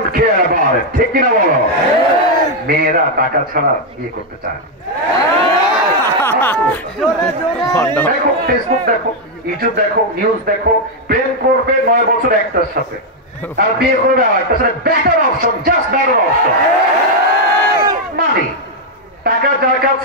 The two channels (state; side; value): normal; both; correlation 0.00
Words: care about it, ঠিক কিনা বলো? মেয়েরা টাকা ছাড়া বিয়ে করতে চায় না। দেখো, ফেসবুক দেখো, ইউটিউব দেখো, নিউজ দেখো, প্রেম করবে 9 বছর একটার সাথে, আর বিয়ে করবে আরেকটার সাথে। Better option, just better option. Money, টাকা যার